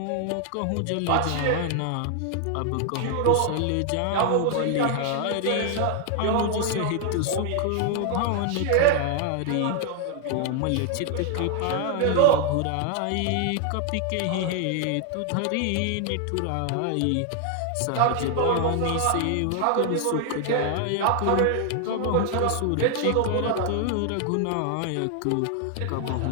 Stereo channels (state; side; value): different; both; correlation 0.00